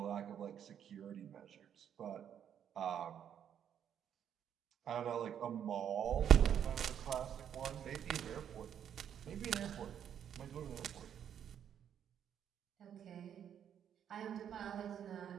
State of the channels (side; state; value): left; quieter; 9.1 dB